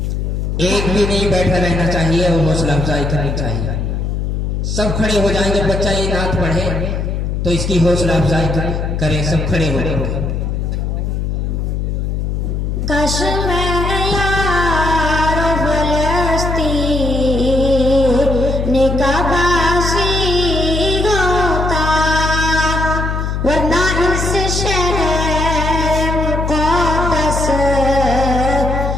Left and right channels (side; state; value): left; noise; hum, 1 dB below the sound